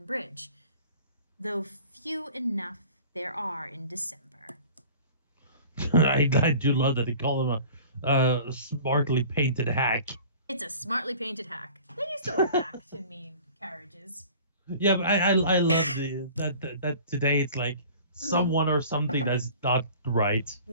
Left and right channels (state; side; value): inverted; both; correlation -0.45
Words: Bridge, though few enough there are in December. I do love that they call him a smartly painted hack. It's a smartly painted hack. They used to wear hack to mean carriages. Yeah, but I love that today it's like someone or something that's not right.